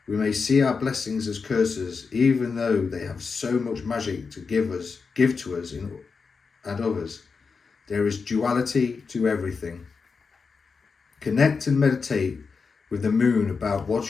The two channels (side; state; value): right; quieter; 5.1 dB